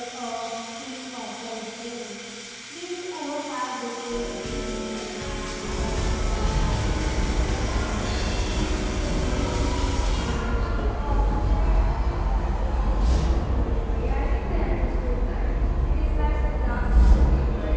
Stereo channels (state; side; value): identical; both; correlation 1.00